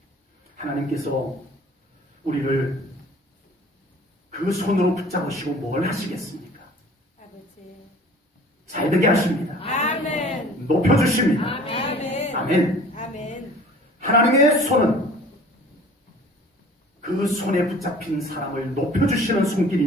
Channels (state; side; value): normal; both; correlation 0.48